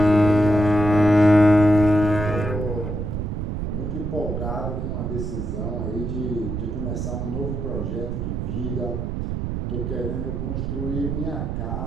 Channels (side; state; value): right; noise; rumble, 3 dB below the sound